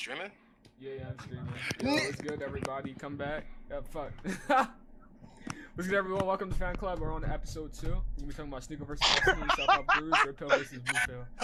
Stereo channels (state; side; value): identical; both; correlation 1.00